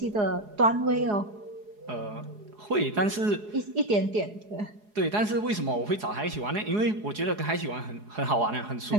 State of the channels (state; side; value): late; left; 4.8 ms